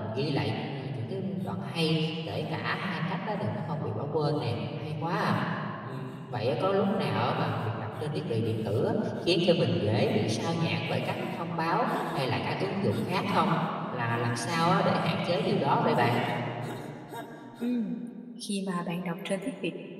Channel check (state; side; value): identical; both; correlation 1.00